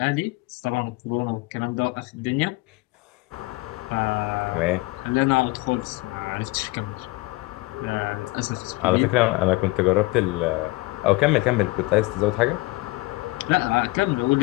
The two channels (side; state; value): right; quieter; 22.3 dB